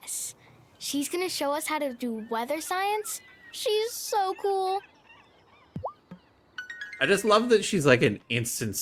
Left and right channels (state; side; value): identical; both; correlation 1.00